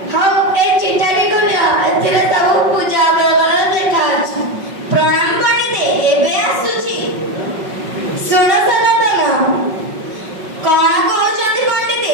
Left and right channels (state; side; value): late; left; 5.4 ms